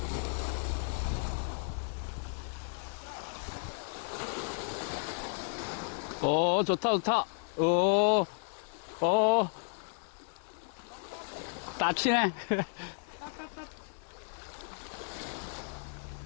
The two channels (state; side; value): silent; right; 55 dB below the other